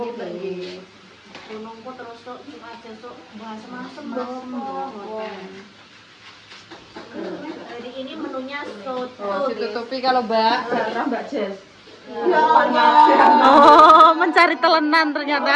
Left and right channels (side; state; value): both; identical; correlation 1.00